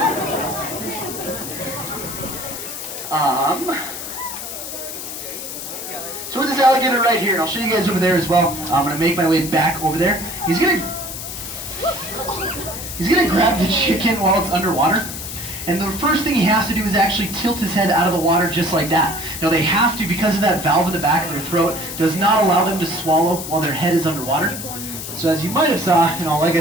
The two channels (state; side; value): noise; left; hiss, 8 dB below the sound